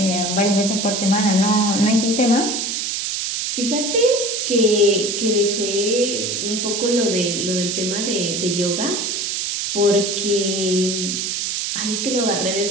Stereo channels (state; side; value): noise; right; hiss, 2 dB below the sound